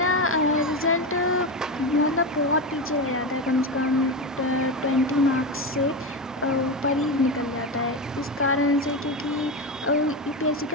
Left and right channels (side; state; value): both; normal; correlation 0.16